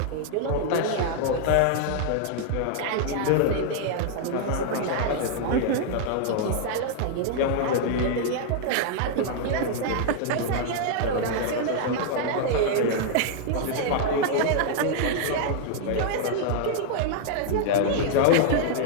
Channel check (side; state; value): both; different; correlation -0.01